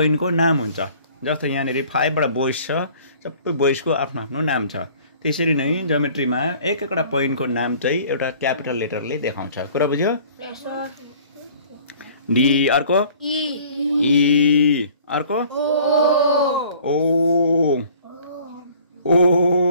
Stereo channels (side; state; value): both; inverted; correlation -0.52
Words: नाम हुन्छ जस्तो यहाँनेरि 5 वटा बोइस छ सबै बोइसको आफ्नो आफ्नो नाम छ त्यसरी नै ज्योमेट्रीमा एक एकवटा पोइन्टको नाम चाहिँ एउटा क्यापिटल लेटरले देखाउँछ कुरा बुझ्यो यस सर डी अर्को ई अर्को ओ